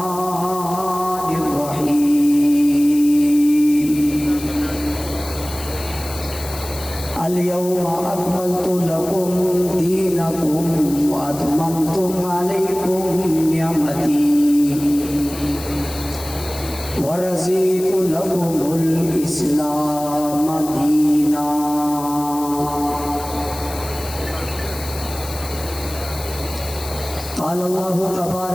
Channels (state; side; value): noise; left; hiss, 13 dB below the sound